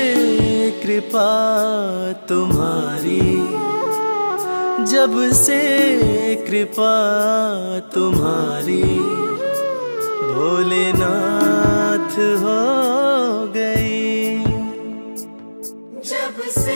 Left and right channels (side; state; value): both; inverted; correlation -1.00